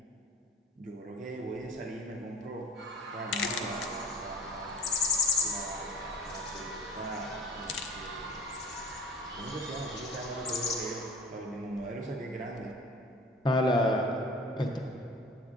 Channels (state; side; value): normal; both; correlation 0.41